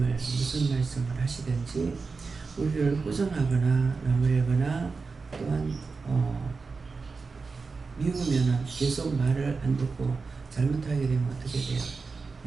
무슨 말씀을 하시든지 우리를 꾸중하거나 나무래거나 또한 미우면은 계속 말을 안 듣고 잘못하게 되면 어떻게 돼요?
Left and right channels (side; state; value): left; quieter; 4.5 dB